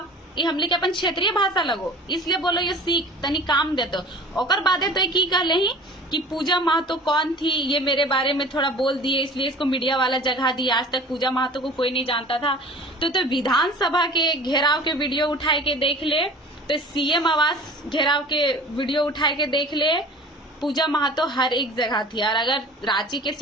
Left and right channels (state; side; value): normal; both; correlation 0.43